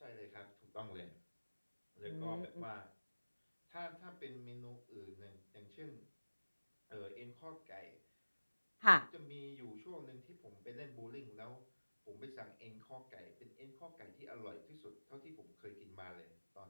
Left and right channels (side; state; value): both; inverted; correlation -1.00